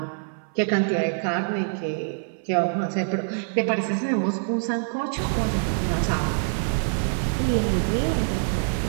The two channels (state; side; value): silent; left; 57 dB below the other